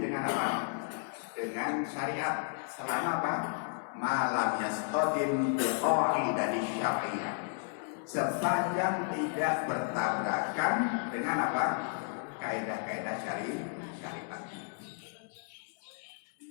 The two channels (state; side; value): silent; right; 56 dB below the other